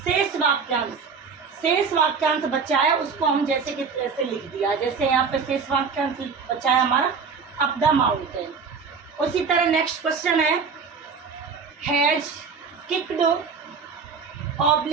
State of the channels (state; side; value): quieter; left; 5.5 dB